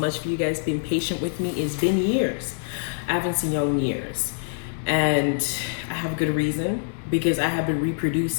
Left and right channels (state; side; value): silent; right; digital silence